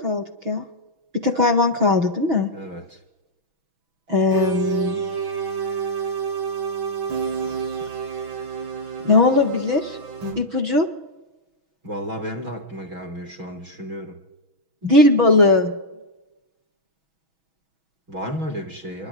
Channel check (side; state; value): left; late; 6.2 ms